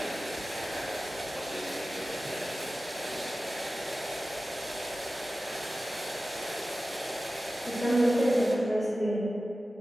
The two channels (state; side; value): normal; both; correlation 0.95